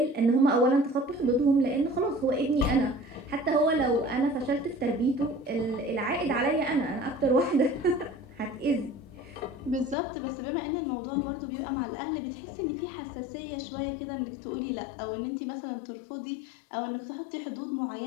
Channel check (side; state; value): right; drops out; at 10.0 s